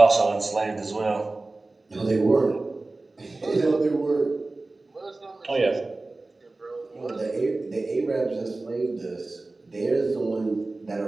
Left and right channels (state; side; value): quieter; left; 3.2 dB